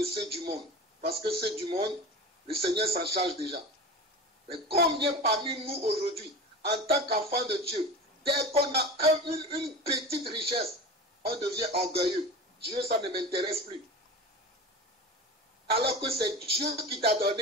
ceux du monde, parce que ceux du monde, le Seigneur s'en charge déjà. Mais combien parmi nous aujourd'hui, en tant qu'enfants de Dieu, dès qu'on a une petite richesse, on devient orgueilleux. Dieu, ça ne m'intéresse plus. Alors que c'est Dieu qui t'a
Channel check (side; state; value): both; normal; correlation 0.31